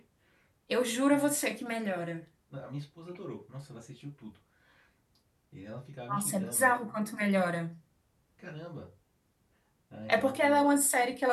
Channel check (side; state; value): both; identical; correlation 1.00